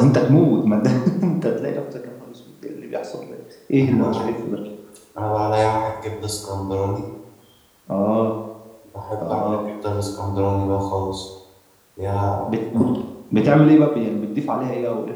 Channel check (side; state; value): both; identical; correlation 1.00